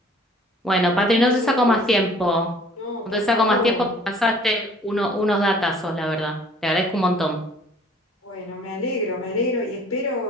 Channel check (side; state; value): both; normal; correlation 0.53